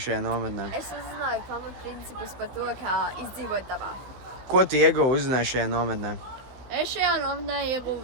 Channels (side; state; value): left; late; 15 ms